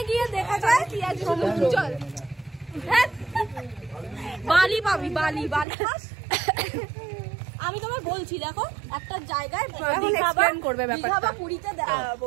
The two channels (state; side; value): drops out; left; at 5.7 s